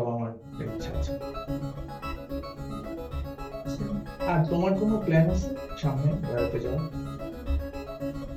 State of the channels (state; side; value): identical; both; correlation 1.00